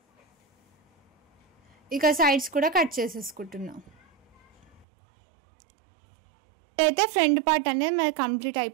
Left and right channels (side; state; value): left; drops out; at 4.9 s